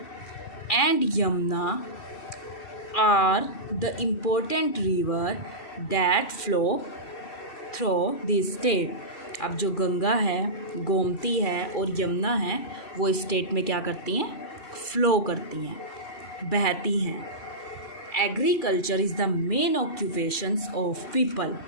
and Yamuna are the important river that flow through this state. अब जो गंगा है, गोमती है और यमुना है, वो स्टेट में क्या करती हैं, फ्लो करती हैं, बहती हैं। Agriculture is the main occupations of people,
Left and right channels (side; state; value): right; late; 2.4 ms